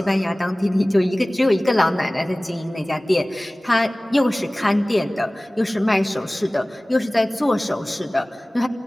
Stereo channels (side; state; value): both; normal; correlation 0.98